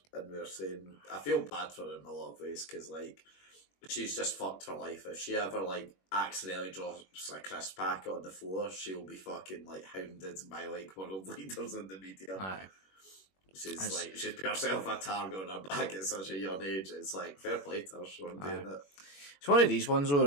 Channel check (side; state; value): right; late; 21 ms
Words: and we were saying I feel bad for her in a lot of ways because like. She's just fucked for life. If she ever like accidentally drops a crisp packet on the floor, she'll be fucking like hounded by like world leaders in the media. Aye. She's put herself a target on her back at such a young age. It's like fair play to her for doing it. It's one of these ones though,